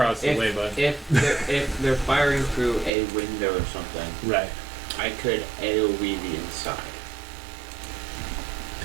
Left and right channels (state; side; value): drops out; left; at 2.9 s